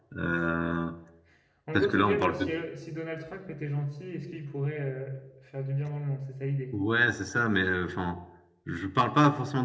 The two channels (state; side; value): identical; both; correlation 1.00